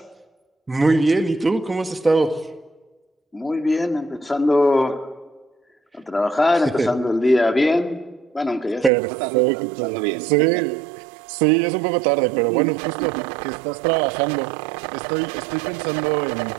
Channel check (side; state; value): left; drops out; at 8.9 s